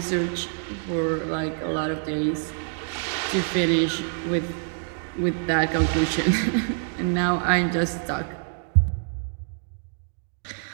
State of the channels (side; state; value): left; silent; 58 dB below the other